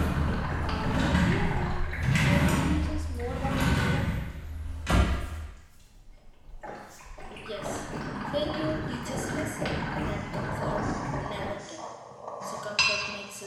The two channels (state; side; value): identical; both; correlation 1.00